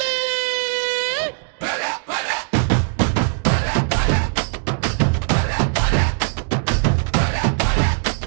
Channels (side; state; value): left; silent; digital silence